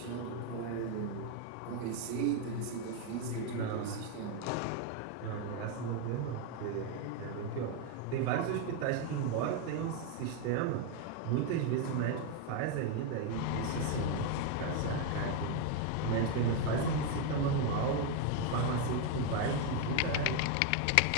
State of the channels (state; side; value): different; both; correlation 0.01